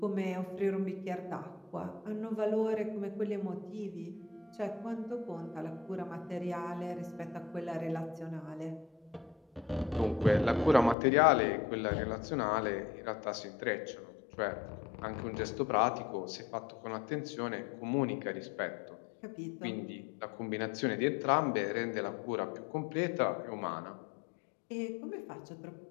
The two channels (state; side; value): drops out; right; at 11.0 s